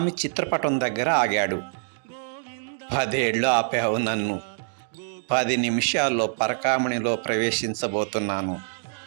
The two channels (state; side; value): silent; left; digital silence